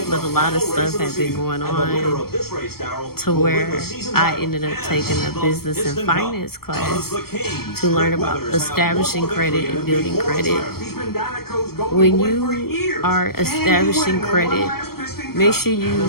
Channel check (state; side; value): late; right; 0.94 ms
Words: but a lot of stuff had been going on to where I ended up taking a business and finance class to learn about establishing credit and building credit. When you are establishing credit, make sure you